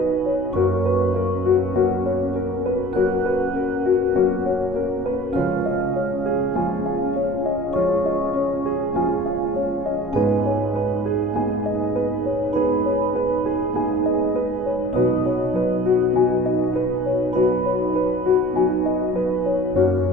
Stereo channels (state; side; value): noise; left; hum, 21 dB below the sound